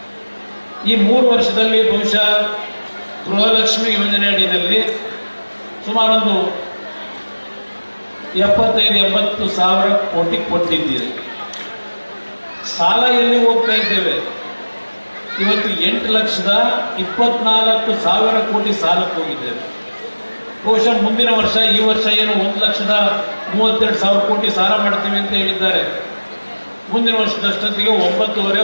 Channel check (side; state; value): both; inverted; correlation -1.00